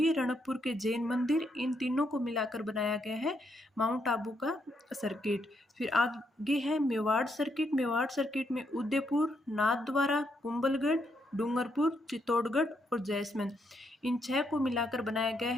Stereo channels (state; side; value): normal; both; correlation 0.77